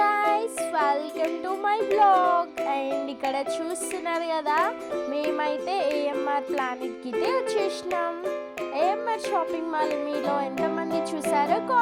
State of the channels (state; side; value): identical; both; correlation 1.00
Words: welcome to my blog. And ఇక్కడ చూస్తున్నారు కదా, మేమైతే ఏఎంఆర్ ప్లానెట్కి అయితే వచ్చేసినాం. ఏఎంఆర్ షాపింగ్ మాల్ మీలో ఎంతమంది చూసారో